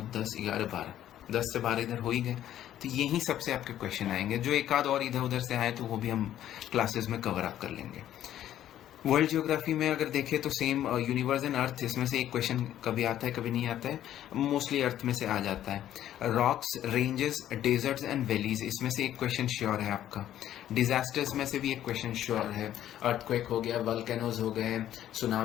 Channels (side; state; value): right; quieter; 11.8 dB